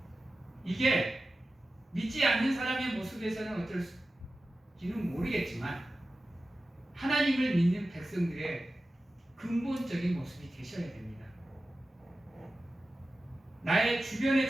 이게 믿지 않는 사람의 모습에서는 어떨지는 모르겠지만 하나님을 믿는 백성들의 근본적인 모습이 되셔야 됩니다. 나의 주변에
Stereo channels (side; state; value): both; normal; correlation 0.94